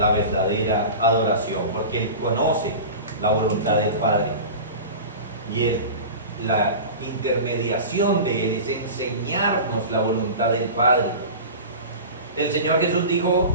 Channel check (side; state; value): both; inverted; correlation -0.32